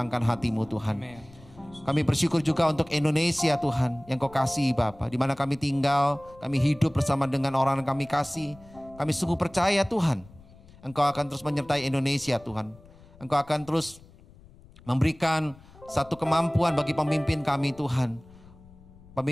hati-Mu Tuhan. Kami bersyukur juga untuk Indonesia Tuhan yang Kau kasih Bapa, di mana kami tinggal, kami hidup bersama dengan orang yang kami kasih. Kami sungguh percaya Tuhan, Engkau akan terus menyertai Indonesia Tuhan. Engkau akan terus memberikan satu kemampuan bagi pemimpin kami Tuhan.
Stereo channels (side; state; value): left; noise; rumble, 23 dB below the sound